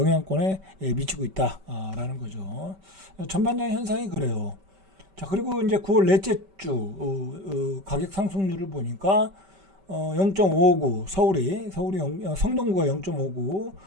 미치고 있다. 라는 거죠. 전반적인 현상이 그래요. 자, 그리고 이제 9월 넷째 주, 가격 상승률을 보니까, 0.59 성동구가 0.59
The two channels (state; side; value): late; left; 5.2 ms